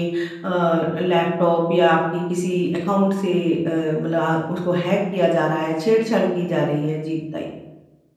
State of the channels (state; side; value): identical; both; correlation 1.00